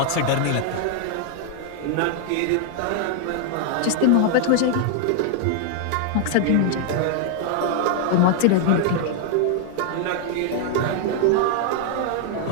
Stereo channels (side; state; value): both; different; correlation 0.00